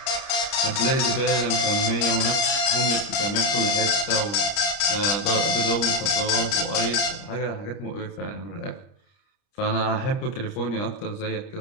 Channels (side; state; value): right; late; 30 ms